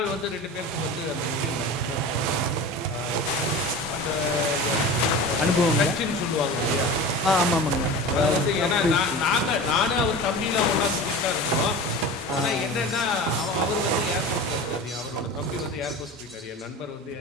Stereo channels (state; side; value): normal; both; correlation 0.33